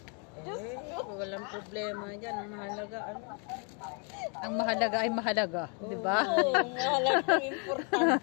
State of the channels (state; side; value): quieter; right; 37.6 dB